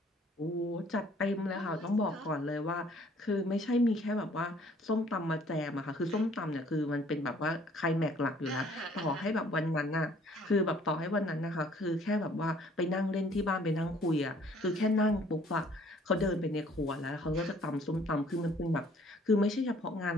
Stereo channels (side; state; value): both; normal; correlation 0.58